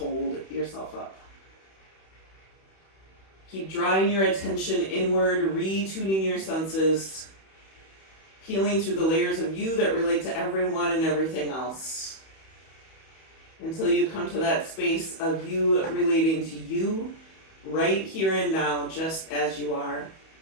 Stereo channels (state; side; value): late; right; 31 ms